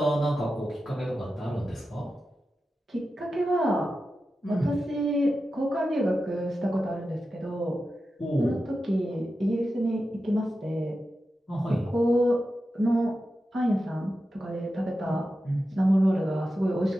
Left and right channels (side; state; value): both; normal; correlation 0.91